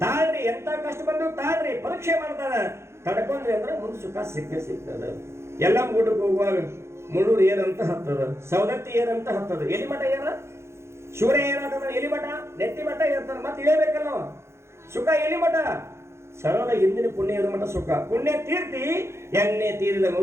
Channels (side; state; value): left; late; 0.13 ms